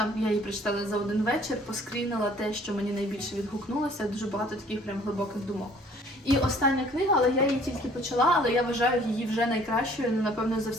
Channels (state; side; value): normal; both; correlation 0.56